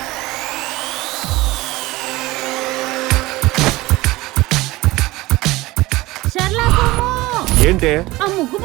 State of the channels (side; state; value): left; quieter; 19.8 dB